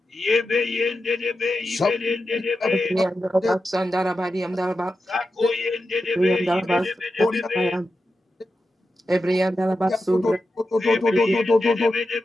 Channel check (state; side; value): normal; both; correlation 0.90